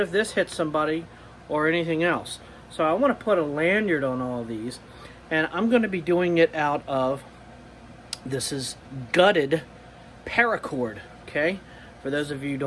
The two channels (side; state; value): both; identical; correlation 1.00